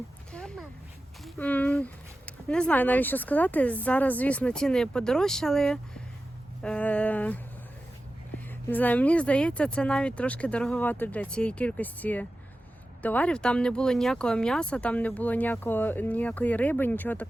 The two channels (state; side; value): normal; both; correlation 0.94